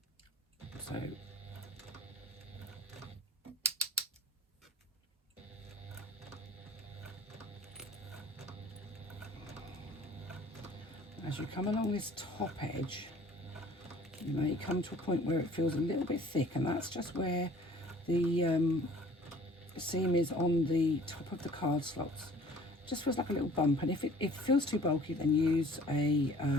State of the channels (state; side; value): normal; both; correlation 0.50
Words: So as you come along this top edge, you may come to a point where it feels a little bit thick, and that's just where the seam is on the top of the card slots. Just feels like a little bump, and if it feels too bulky, then use a